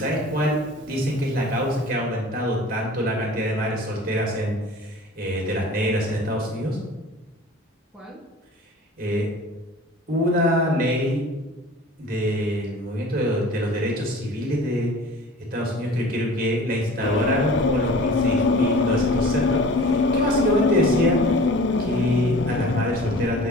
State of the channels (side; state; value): both; normal; correlation 0.43